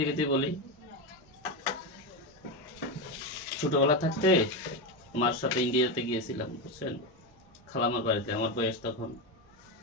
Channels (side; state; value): both; normal; correlation 0.13